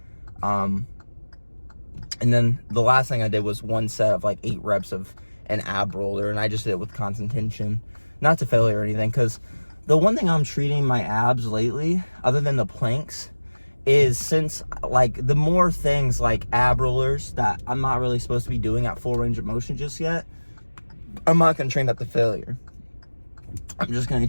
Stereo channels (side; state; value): both; inverted; correlation -1.00